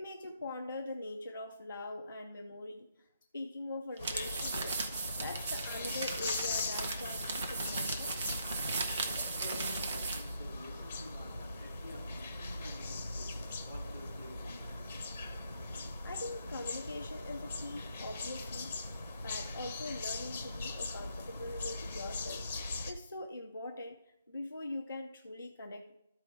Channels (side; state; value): both; inverted; correlation -0.74